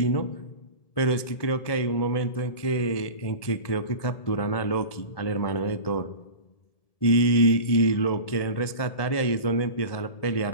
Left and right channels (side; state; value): right; late; 1.7 ms